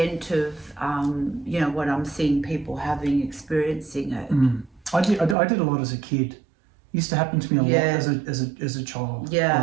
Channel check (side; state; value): left; drops out; at 5.4 s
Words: of what I'm seeing people experiencing it. I did a lot as a kid. It used to happen to me a lot as a child.